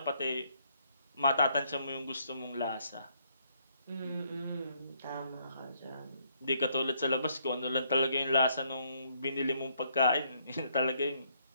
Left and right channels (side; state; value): both; inverted; correlation -0.70